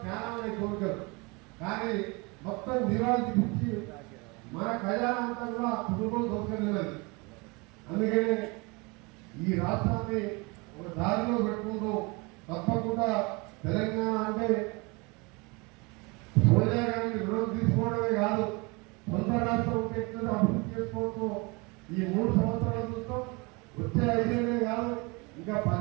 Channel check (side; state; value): left; quieter; 27.7 dB